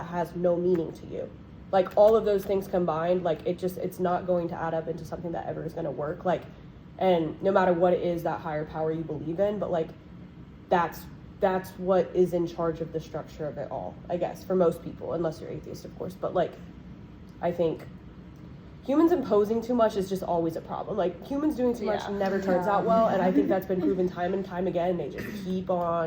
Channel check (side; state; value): both; identical; correlation 1.00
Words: has no meaning to you. Like all of those things combined, like it's not going to add up into something that ever is going to work. Like, and no matter what it is, that higher power you believe in, but like that's what is in charge of the structure of it all, I guess, for most people, unless you're atheist, of course. But like I think humans imposing too much is just always a problem. Like humans doing too much never turns out well, and I think that's been proven time and time again. They just keep